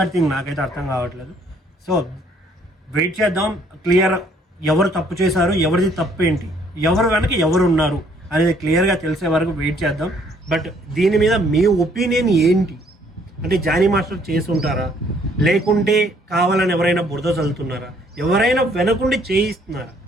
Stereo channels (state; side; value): normal; both; correlation 0.63